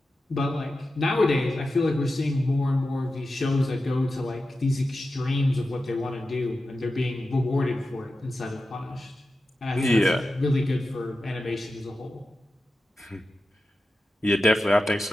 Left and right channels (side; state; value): both; normal; correlation 0.92